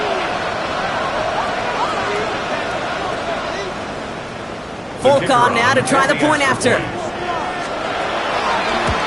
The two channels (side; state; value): both; identical; correlation 1.00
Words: Folk on now to try the point after.